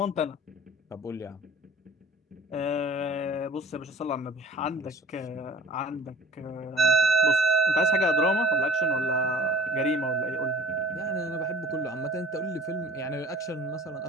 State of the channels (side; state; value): both; normal; correlation 0.47